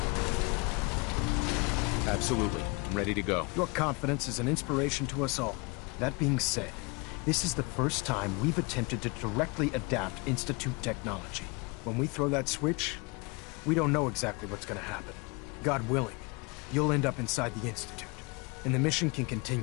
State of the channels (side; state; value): right; quieter; 29.0 dB